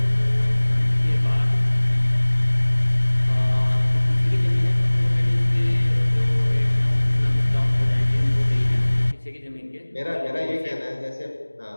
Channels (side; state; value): both; inverted; correlation -1.00